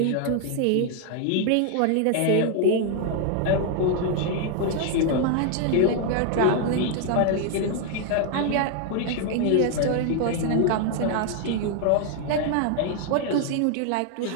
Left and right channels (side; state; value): both; different; correlation 0.00